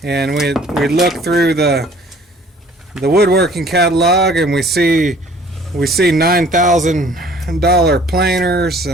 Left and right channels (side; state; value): both; normal; correlation 0.54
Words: And we look through the woodworking catalog and we see $9,000 planers